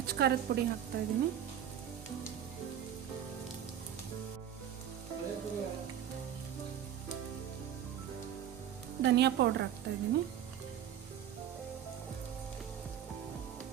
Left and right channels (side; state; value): left; quieter; 10.0 dB